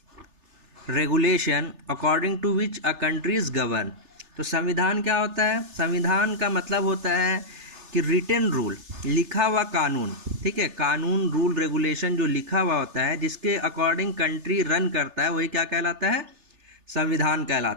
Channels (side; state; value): left; late; 3.4 ms